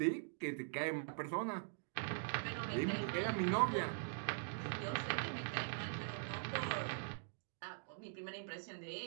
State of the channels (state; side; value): silent; left; digital silence